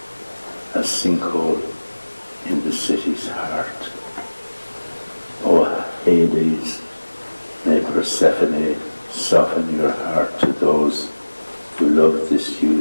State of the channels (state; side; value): inverted; both; correlation -1.00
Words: A sinkhole in the city's heart. Oh, Hades, may Persephone soften your heart to those who love this